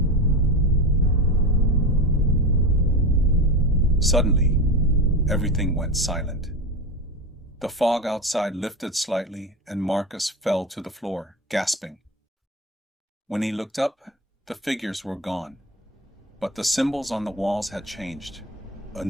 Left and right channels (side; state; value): both; normal; correlation 0.23